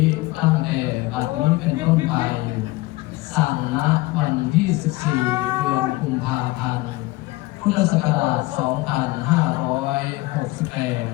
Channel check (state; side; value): quieter; right; 20.3 dB